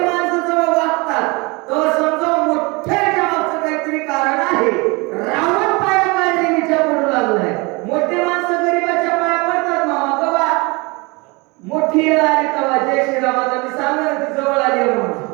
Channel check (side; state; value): left; quieter; 26.7 dB